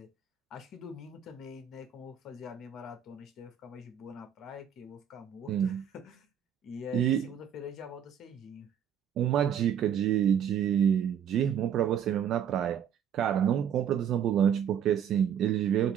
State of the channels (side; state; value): left; quieter; 8.7 dB